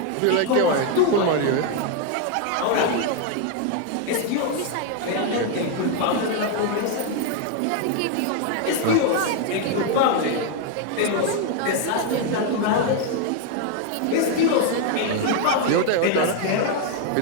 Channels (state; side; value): different; both; correlation 0.01